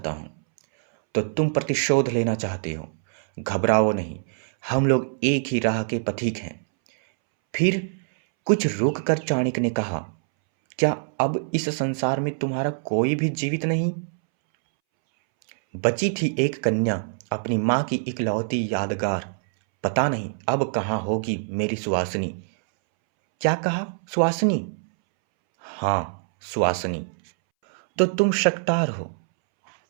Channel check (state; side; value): silent; left; 62 dB below the other